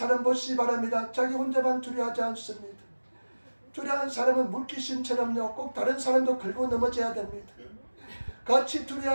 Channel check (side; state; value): both; inverted; correlation -1.00